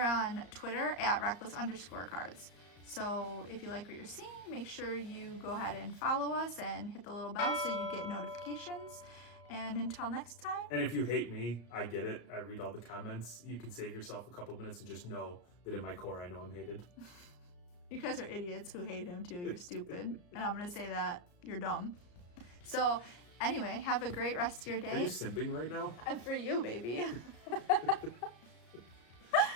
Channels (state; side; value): late; right; 34 ms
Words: on Twitter at Reckless_Cards. So if you like what you're seeing, make sure you go ahead and follow us and hit the little bell so you get notifications. And until next time. And if you hate me, I get it. I read all the comments. You can save yourself a couple minutes and just know that in my core, I know I'm hated. You guys are idiots who hate him too. You're stupid. And I'm going to say that you're dumb. So anyway, have a great rest of your day. Are you simping right now? And for you, baby.